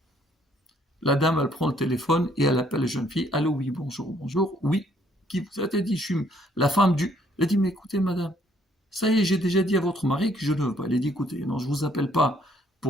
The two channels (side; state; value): both; normal; correlation 0.66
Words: La dame, elle prend le téléphone et elle appelle la jeune fille. Allô, oui, bonjour, bonjour. Oui, qui vous a dit, je suis la femme du... Elle a dit, mais écoutez, madame, ça y est, j'ai déjà dit à votre mari que je ne veux pas. Elle a dit, écoutez, non, je ne vous appelle pas